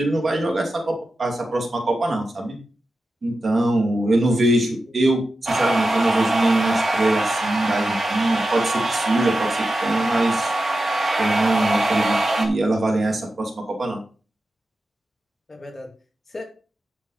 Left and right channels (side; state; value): both; normal; correlation 0.92